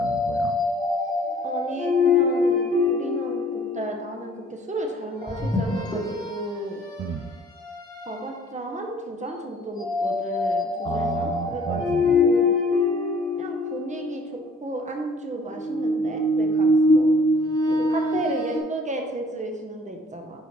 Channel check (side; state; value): both; normal; correlation 0.55